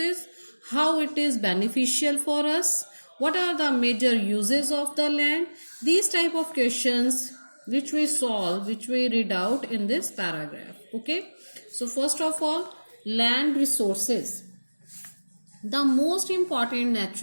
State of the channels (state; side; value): inverted; both; correlation -1.00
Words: How it is beneficial for us? What are the major uses of the land? These type of questions which we solve, which we read out in this paragraph. Okay. So first of all, land resources. The most important